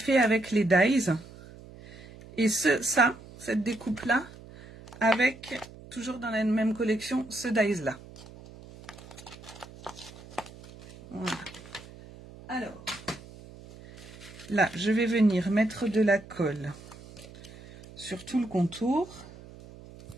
avec les dies. Et cette découpe-là, avec, toujours dans la même collection, ce dies-là. Voilà. Alors, là, je vais venir mettre de la colle sur tout le contour.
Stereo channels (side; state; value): right; noise; hum, 18 dB below the sound